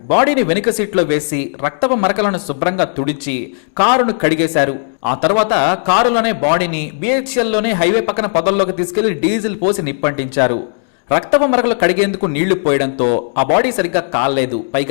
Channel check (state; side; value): silent; right; digital silence